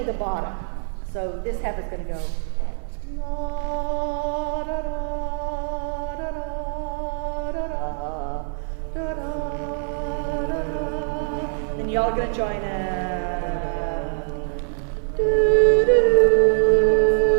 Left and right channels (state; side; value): silent; left; digital silence